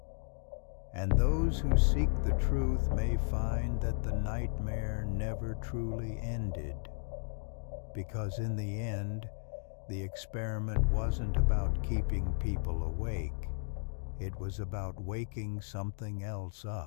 And those who seek the truth may find that the nightmare never truly ended, because in the end, the experiment wasn't about keeping people awake. It was about waking something else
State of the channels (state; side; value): silent; right; digital silence